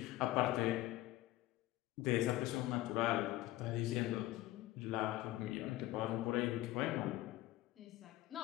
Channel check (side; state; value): right; quieter; 16.7 dB